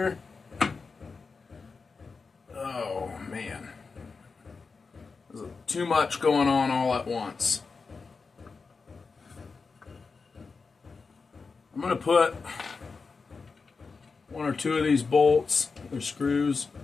Oh, man. There's too much going on all at once. I'm going to put one or two of these bolts, or screws,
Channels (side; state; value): right; quieter; 4.6 dB